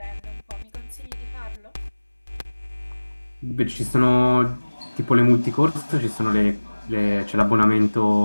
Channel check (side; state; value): both; inverted; correlation -1.00